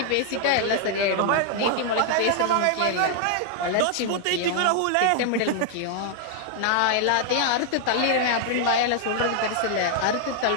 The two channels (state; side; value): different; both; correlation 0.00